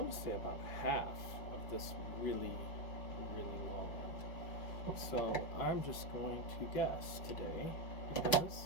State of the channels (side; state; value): right; late; 5.5 ms